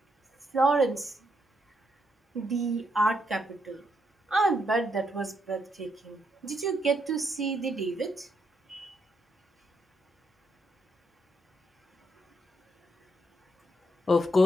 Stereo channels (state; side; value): normal; both; correlation 0.78